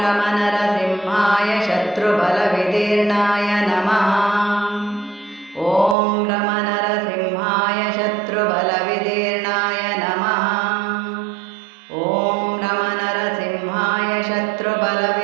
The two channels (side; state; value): left; drops out; at 6.0 s